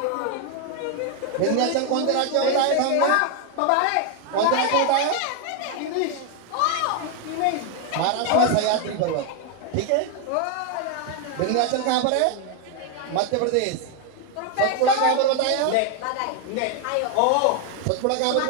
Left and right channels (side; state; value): both; different; correlation 0.00